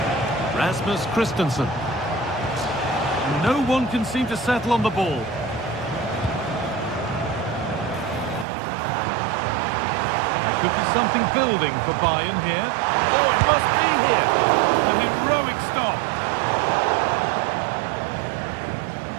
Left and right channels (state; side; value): drops out; left; at 8.5 s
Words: Rasmus Christensen. No one can seem to settle on the ball. There could be something building for Bayern here. Oh, it must be here. A heroic stop.